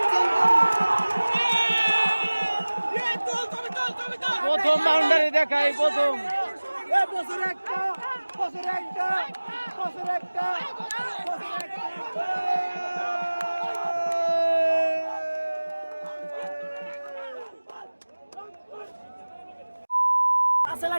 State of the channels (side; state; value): both; inverted; correlation -1.00